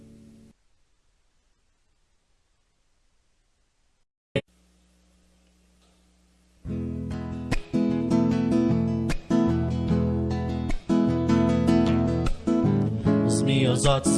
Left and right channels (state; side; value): identical; both; correlation 1.00